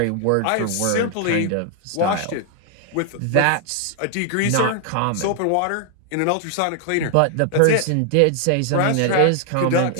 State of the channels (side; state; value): both; different; correlation 0.00